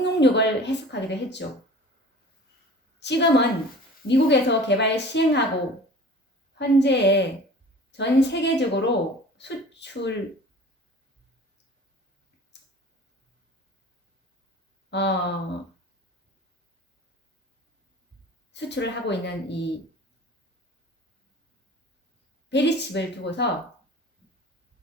해석하기도 했죠. 지금은 미국에서 개발 시행하고 현재 전 세계적으로 수출을 하고 있는 이 베리칩을 두고서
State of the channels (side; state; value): both; normal; correlation 0.43